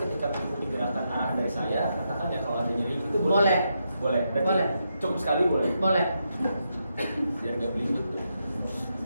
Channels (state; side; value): inverted; both; correlation -0.83